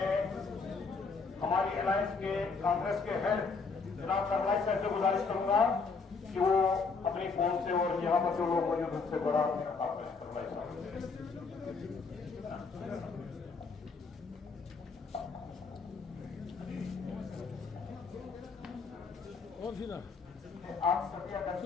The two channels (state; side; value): quieter; right; 4.7 dB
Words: हमारी अलायंस के कांग्रेस के हेड जनाब सरवाई साहब से गुजारिश करूंगा कि वो अपनी फोन से और यहाँ पर जो लोग मौजूद उनसे बड़ा आपने सरवाई साहब और फिर आप सभी